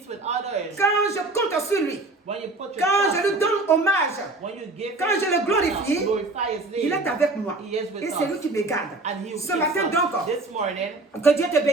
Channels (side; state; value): left; quieter; 3.0 dB